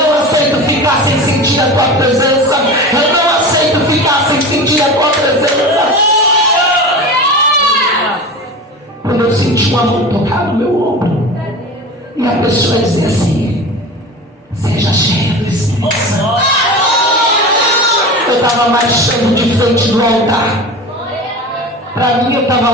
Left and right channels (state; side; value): normal; both; correlation 0.31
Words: aceito ficar sem sentir a tua presença. Eu não aceito ficar sem sentir a tua presença. Quando eu senti uma mão tocar no meu ombro, e a pessoa dizia assim, seja cheia do Espírito Santo. Eu estava marchando de frente do altar. Para mim eu estava